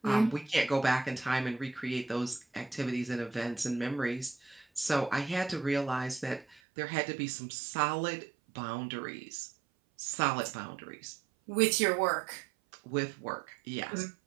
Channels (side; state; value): left; drops out; at 6.6 s